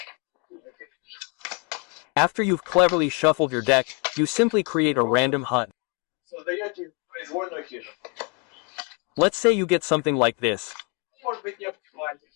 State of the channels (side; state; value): right; quieter; 33.9 dB